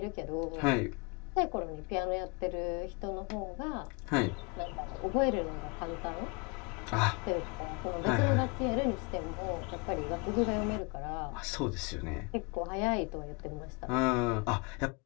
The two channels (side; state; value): right; quieter; 30.7 dB